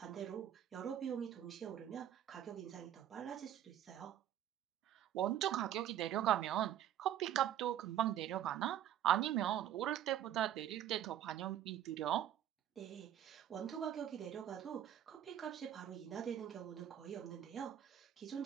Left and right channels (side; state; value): left; quieter; 11.1 dB